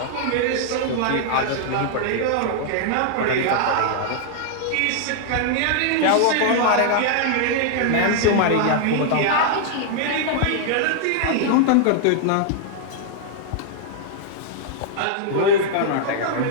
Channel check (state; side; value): different; both; correlation -0.01